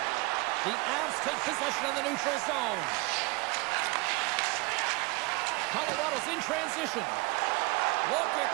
The Avs take possession in the neutral zone. Colorado's in transition. Look at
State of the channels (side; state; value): left; quieter; 25.0 dB